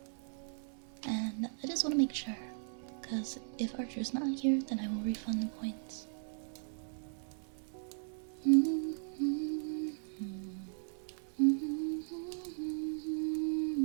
And I just want to make sure, because if Archer's not here, then I will refund the points.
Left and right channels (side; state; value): left; silent; digital silence